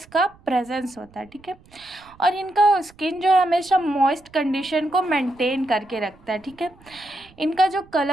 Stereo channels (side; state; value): right; noise; rumble, 27 dB below the sound